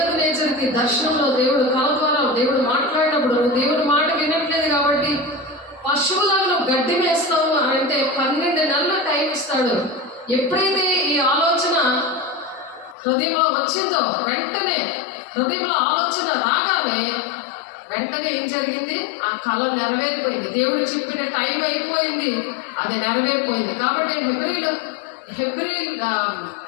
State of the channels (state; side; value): drops out; right; at 13.0 s